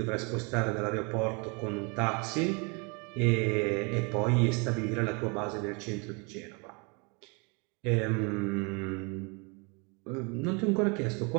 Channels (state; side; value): quieter; left; 32.0 dB